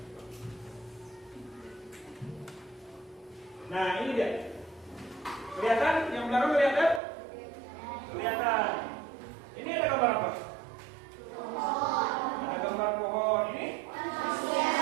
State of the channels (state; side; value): drops out; left; at 7.0 s